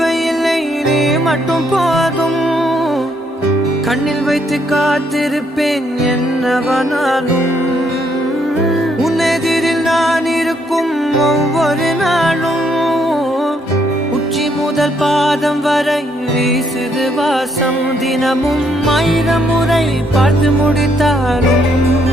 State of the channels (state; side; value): normal; both; correlation 0.72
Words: நீ மட்டும் போதும். கண்ணில் வைத்து காத்திருப்பேன் என்னவனாலும். உன்னெதிரில் நான் இருக்கும் ஒவ்வொரு நாளும், உச்சி முதல் பாதம் வரை வீசுது வாசம். தினமும் 1000 முறை பார்த்து முடித்தாலும்